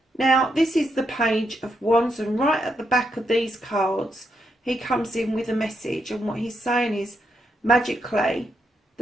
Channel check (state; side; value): normal; both; correlation 0.80